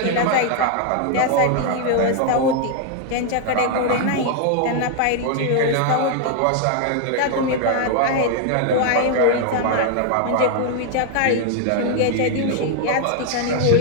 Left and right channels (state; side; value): different; both; correlation 0.00